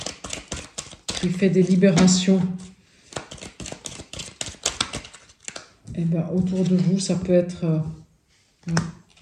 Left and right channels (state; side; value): identical; both; correlation 1.00